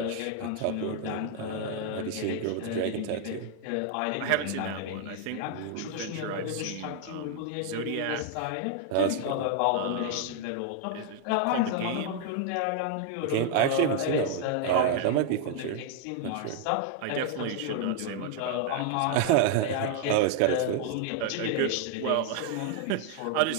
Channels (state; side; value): different; both; correlation 0.00